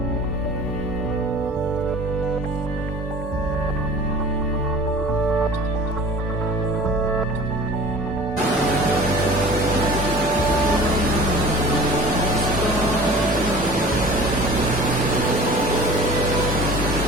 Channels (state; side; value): normal; both; correlation 0.43